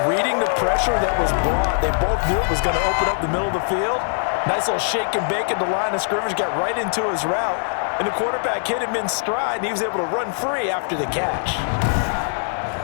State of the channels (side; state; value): right; silent; digital silence